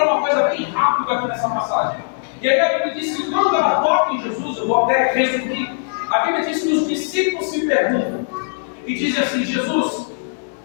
uma coisa bem rápida aqui nessa passagem. E aí a Bíblia diz que quando ela toca em Jesus, eu vou até resumir, a Bíblia diz que os discípulos se perguntam e dizem assim: Jesus,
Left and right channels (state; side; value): silent; right; digital silence